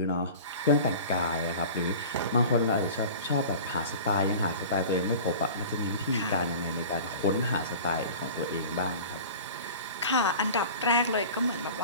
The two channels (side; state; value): both; inverted; correlation -0.38